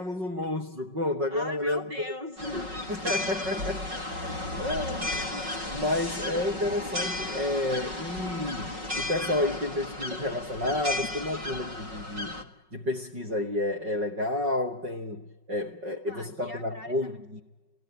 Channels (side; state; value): left; late; 5.4 ms